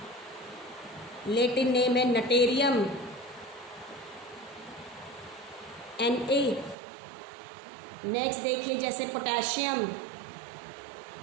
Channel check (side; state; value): left; drops out; at 6.8 s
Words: लेटिन नेम है नटेरियम। Na। नेक्स्ट देखिए जैसे पोटेशियम,